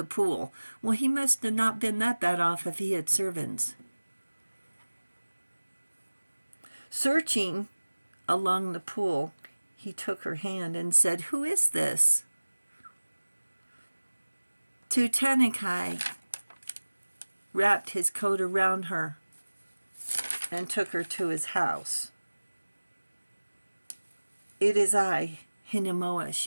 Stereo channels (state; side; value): inverted; both; correlation -1.00